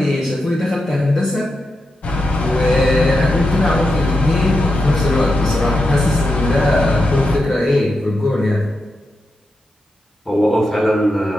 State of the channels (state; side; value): normal; both; correlation 0.87